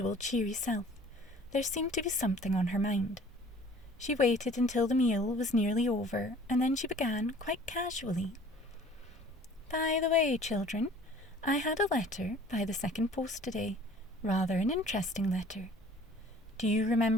cheery self. There seemed to be something on her mind. She waited until the meal was nearly over, and then she began, quite casually. "By the way, children, I had a letter by the second post today, rather an interesting letter. Do you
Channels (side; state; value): both; normal; correlation 0.50